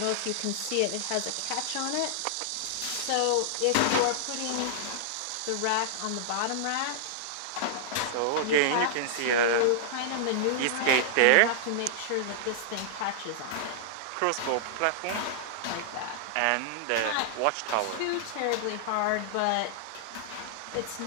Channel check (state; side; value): different; both; correlation -0.01